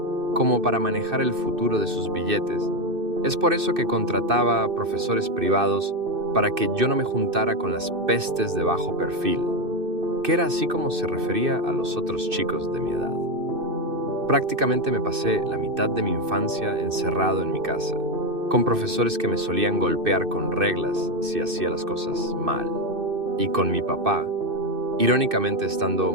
como para manejar el futuro de sus billetes. Es por eso que contrataba a profesores privados para que yo no me juntara con las pestes de bajo perfil, que era así como se refería a los otros chicos de mi edad. Prácticamente me pasé la mitad de mi infancia encerrado en mi casa, con profesores que me solían golpear con reglas si hacía las cosas mal, y con mi papá, irónicamente estando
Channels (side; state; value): left; late; 2.6 ms